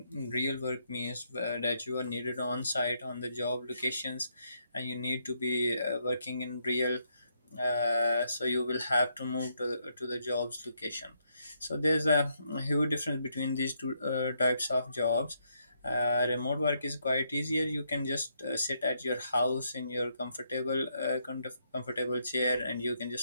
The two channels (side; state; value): both; inverted; correlation -0.76